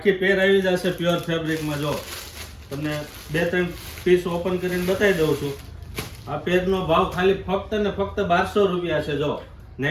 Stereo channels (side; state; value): both; identical; correlation 1.00